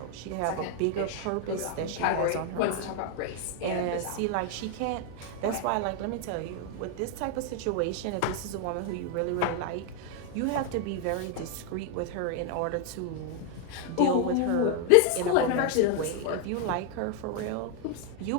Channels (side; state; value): both; different; correlation 0.00